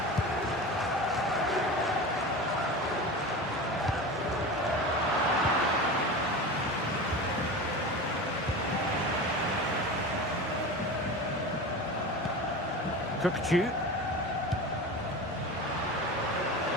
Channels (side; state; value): both; normal; correlation 0.29